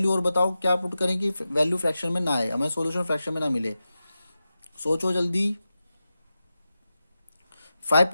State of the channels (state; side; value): inverted; both; correlation -0.92